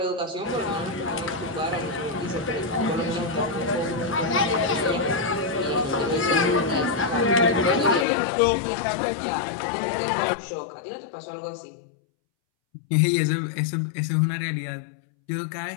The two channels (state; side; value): drops out; right; at 8.1 s